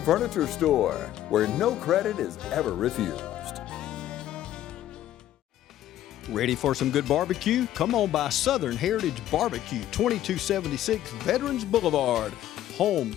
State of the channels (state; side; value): quieter; right; 12.7 dB